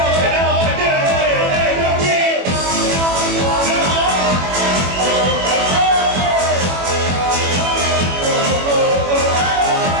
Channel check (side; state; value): left; late; 21 ms